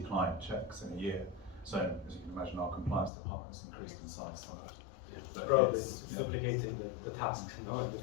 client checks in a year. So as you can imagine, our compliance department has increased in size somewhat. But probably duplicating the task in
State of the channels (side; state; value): right; drops out; at 3.1 s